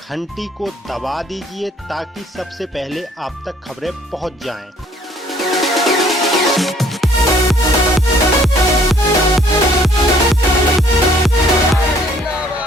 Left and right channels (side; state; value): both; normal; correlation 0.60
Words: को दबा दीजिए ताकि सबसे पहले आप तक खबरें पहुंच जाएं।